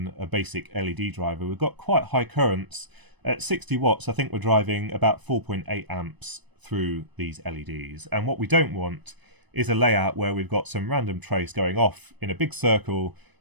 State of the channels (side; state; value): left; late; 1.0 ms